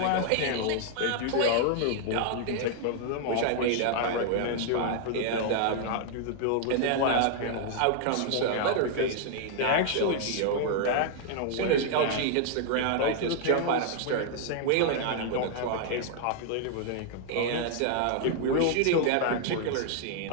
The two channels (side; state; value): both; different; correlation -0.01